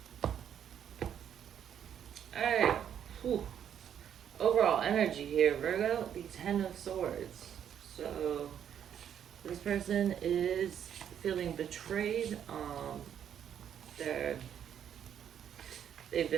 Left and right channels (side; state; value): left; quieter; 9.2 dB